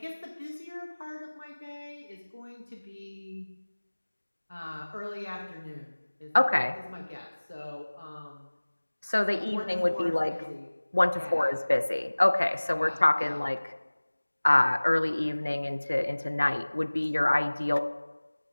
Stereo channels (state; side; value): inverted; both; correlation -1.00